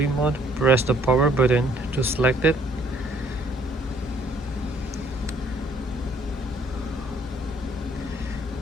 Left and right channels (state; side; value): normal; both; correlation 0.63